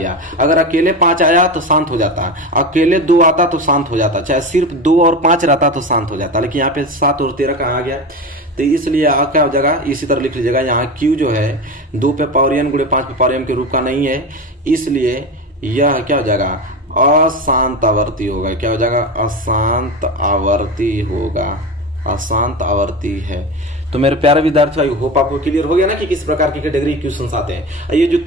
अगर अकेले 5 आया तो शांत हो जाता, अकेले 2 आता तो शांत हो जाता, चाहे सिर्फ 2 और 5 रहता तो शांत हो जाता, लेकिन यहाँ पे 7 और 13 कहाँ आ गया। तो इसलिए क्या हो जाएगा, इसी तरह लिख लीजिएगा, यहाँ Q जो है 2 पे पावर n गुणे 5 पे पावर m के रूप का नहीं है, इसलिए यह क्या हो जाएगा, अशांत आवर्ती होगा। क्या हो जाएगा, अशांत आवर्ती होगा, अशांत आवर्ती है। तो मेरे प्यारे विद्यार्थियों, आई होप आपको क्लियर हो गया ना कि किस प्रकार की कैटेगरी क्वेश्चंस आते हैं। ये जो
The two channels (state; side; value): normal; both; correlation 0.24